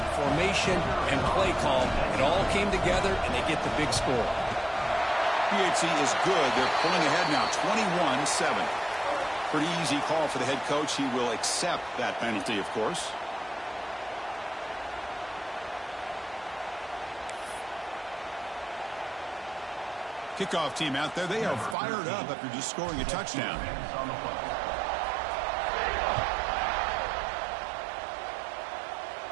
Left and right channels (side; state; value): left; drops out; at 21.8 s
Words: formation, and play call. It all came together, and they get the big score. PHC is good. They're pulling ahead now, 21-7. Pretty easy call for the head coach. He will accept that penalty, of course. Kickoff team out there. They are fired up after just scoring a touchdown.